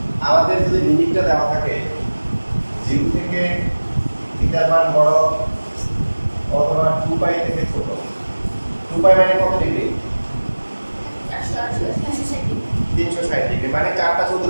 আমাদের যদি লিমিটটা দেওয়া থাকে 0 থেকে থিটার মান বড় অথবা 2π থেকে ছোট, 2π মানে কত ডিগ্রি? 360 ডিগ্রি, মানে চারটা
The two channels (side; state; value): both; inverted; correlation -1.00